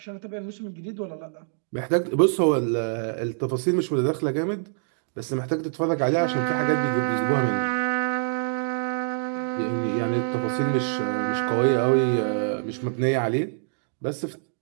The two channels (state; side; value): silent; left; digital silence